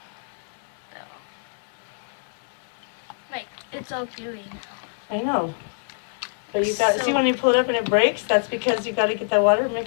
No. Like, it's all gooey now. I know. But you got, see when you pull it up and it breaks? That's because you got to get that water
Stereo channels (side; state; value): right; silent; 61 dB below the other